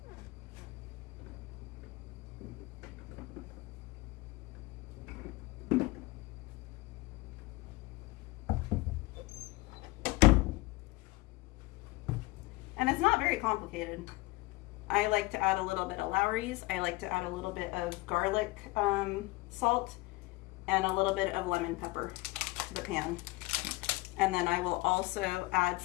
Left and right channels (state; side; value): quieter; right; 22.0 dB